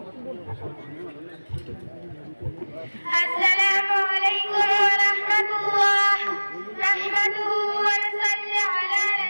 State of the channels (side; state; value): both; inverted; correlation -1.00